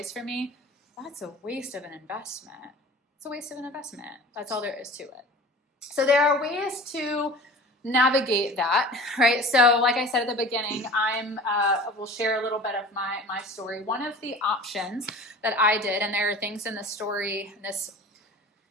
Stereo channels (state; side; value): normal; both; correlation 0.40